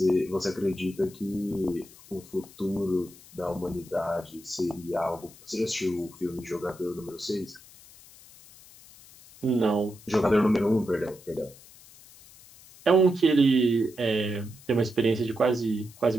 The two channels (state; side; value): noise; left; hiss, 22 dB below the sound